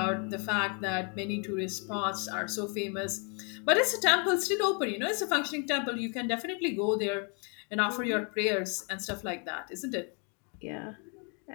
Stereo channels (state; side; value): quieter; right; 37.3 dB